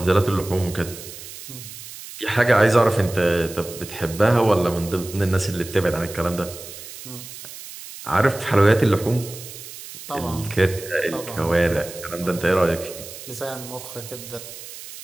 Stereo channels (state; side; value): noise; right; hiss, 13 dB below the sound